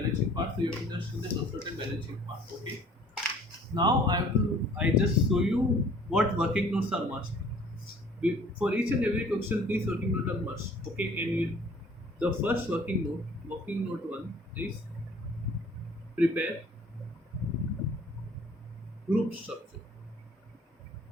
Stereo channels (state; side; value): normal; both; correlation 0.53